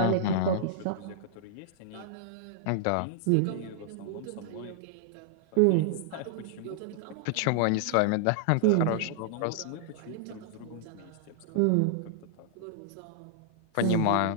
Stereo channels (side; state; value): both; different; correlation -0.01